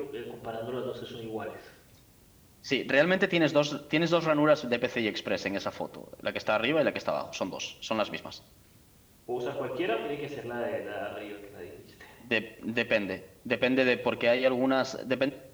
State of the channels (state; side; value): identical; both; correlation 1.00